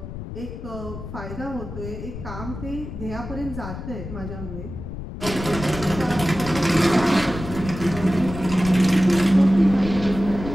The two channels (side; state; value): left; noise; rumble, 9 dB below the sound